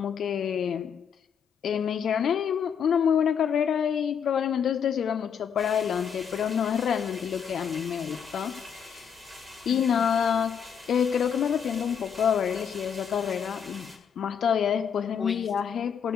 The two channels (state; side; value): quieter; right; 7.6 dB